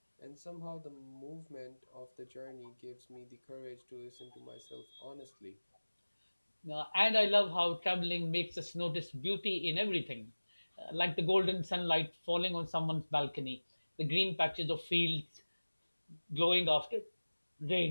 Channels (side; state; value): both; inverted; correlation -1.00